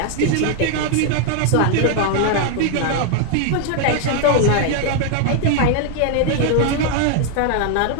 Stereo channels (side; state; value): both; different; correlation 0.00